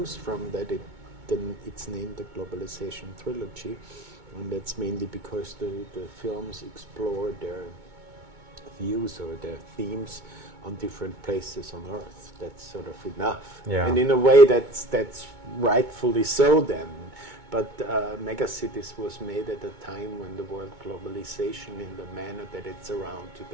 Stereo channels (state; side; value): late; left; 2.2 ms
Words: from, that it's named the Globalization Trilogy, and that's mainly because the films explore their views or their themes on different places on Earth. That's sort of enough. Yeah. And in a way that's rightfully so then. But Megacities was made at a time when the word globalization in the manner that it's around